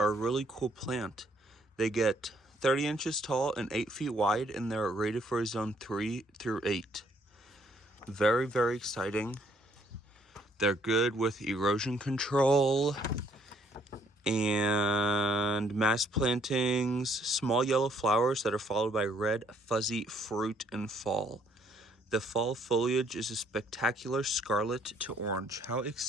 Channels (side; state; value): both; normal; correlation 0.66